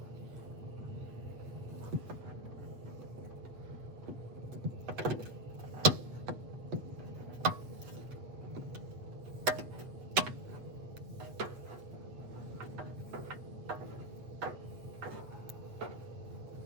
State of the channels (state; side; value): late; left; 8.0 ms